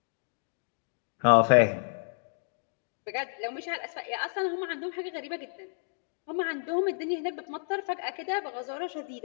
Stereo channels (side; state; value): right; silent; digital silence